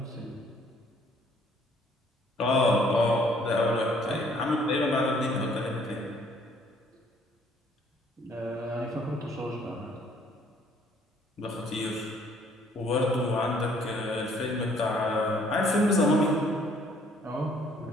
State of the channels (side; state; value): both; normal; correlation 0.61